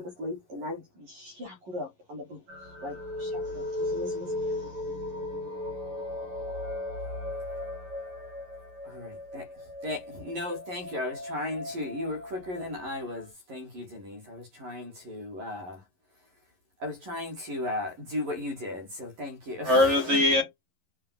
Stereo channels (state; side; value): late; left; 11 ms